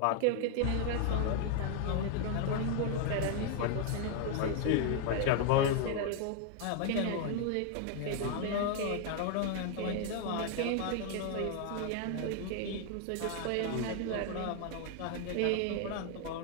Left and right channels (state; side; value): different; both; correlation 0.00